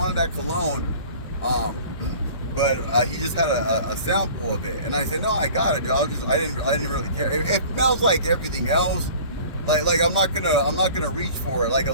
that cologne. But he just had a sample of it, and I said, no, I got it, dude. I didn't really care. It smells like everything else. Like I'm not gonna reach for it. Like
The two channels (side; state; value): both; inverted; correlation -0.45